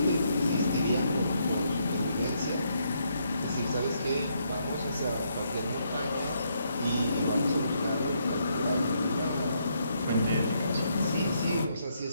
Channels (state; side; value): inverted; both; correlation -0.75